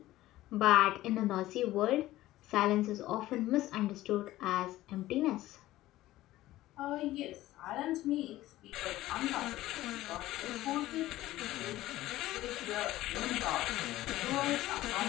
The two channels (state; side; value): quieter; right; 15.9 dB